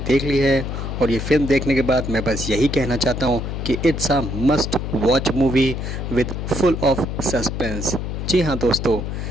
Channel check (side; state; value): left; noise; hum, 4 dB below the sound